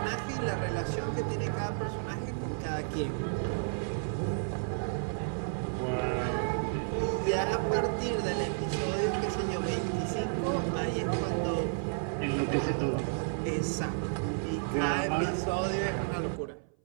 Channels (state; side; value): silent; left; 57 dB below the other